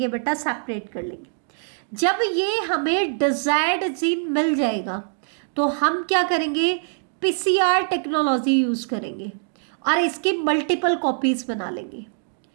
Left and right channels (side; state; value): left; silent; digital silence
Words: बेटा, सेपरेट कर लेंगे। जब ये हमें डिजायर्ड जीन मिल जाएगा तो हम क्या करेंगे, पीसीआर टेक्नोलॉजी यूज करेंगे और इसकी मल्टीपल कॉपीज बना लेंगे,